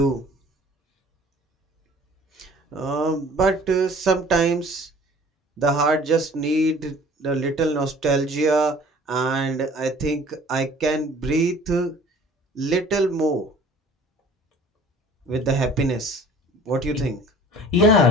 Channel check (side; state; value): both; normal; correlation 0.49